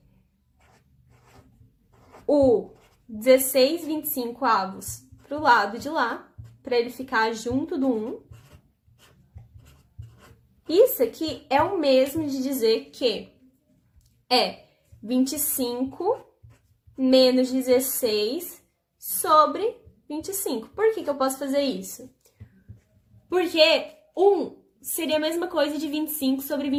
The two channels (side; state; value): both; identical; correlation 1.00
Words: o 16/25 para o lado de lá, para ele ficar junto do 1. Isso aqui é o mesmo de dizer que é 25 menos 16 sobre 25. Por que eu posso fazer isso? Porque 1 seria a mesma coisa de 25 sobre